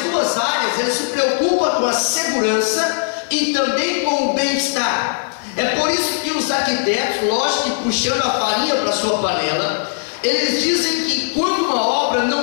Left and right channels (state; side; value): silent; right; digital silence